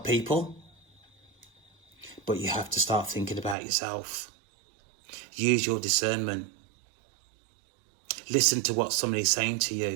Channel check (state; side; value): drops out; left; at 3.6 s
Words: people, but you have to start thinking about yourself. Use your discernment. Listen to what somebody's saying to